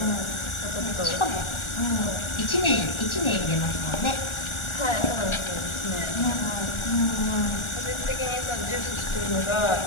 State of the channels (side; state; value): right; late; 1.4 ms